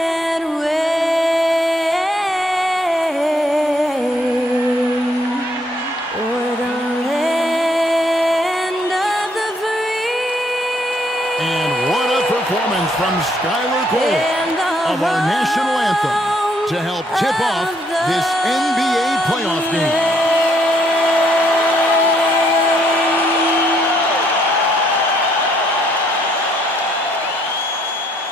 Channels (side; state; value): both; normal; correlation 0.70